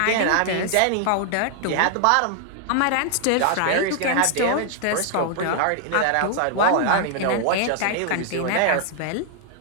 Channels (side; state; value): both; different; correlation 0.00